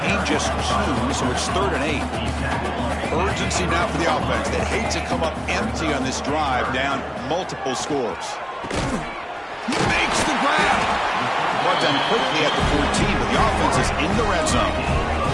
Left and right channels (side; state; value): both; identical; correlation 1.00